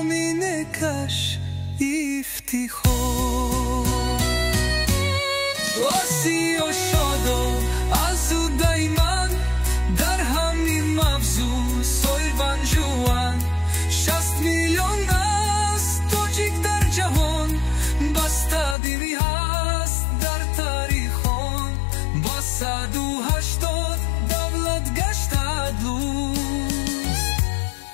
افتخار. آسی و شاداب از او دایمن، در همین مفزون سوی بنجوان. 60 میلیون است تاجیک در جهان، بسته دینی هست در تاریخان. با 180 دولت گشته دوست،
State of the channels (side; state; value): right; drops out; at 18.8 s